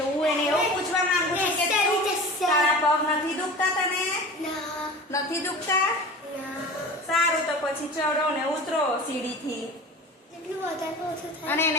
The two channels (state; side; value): normal; both; correlation 0.36